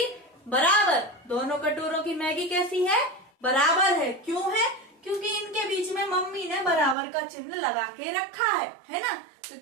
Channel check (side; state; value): left; drops out; at 7.0 s